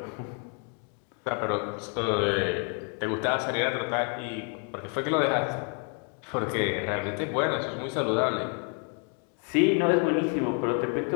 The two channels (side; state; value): right; quieter; 39.0 dB